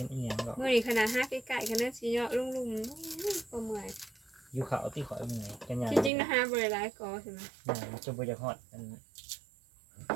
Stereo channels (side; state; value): left; drops out; at 6.1 s